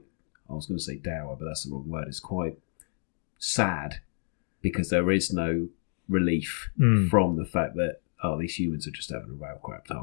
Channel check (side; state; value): right; silent; digital silence